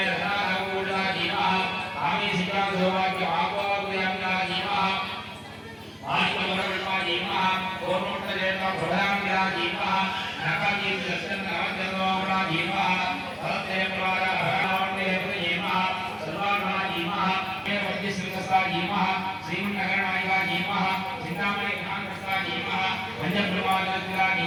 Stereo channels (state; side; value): identical; both; correlation 1.00